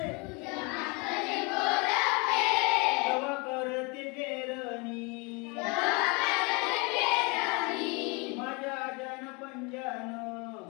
तवा करते पेरणी माझ्या जन पंजान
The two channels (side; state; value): right; quieter; 28.1 dB